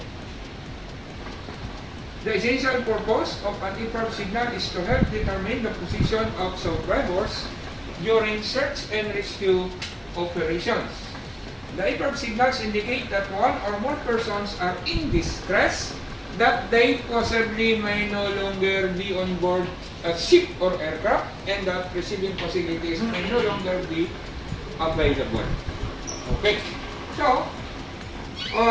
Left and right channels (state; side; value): identical; both; correlation 1.00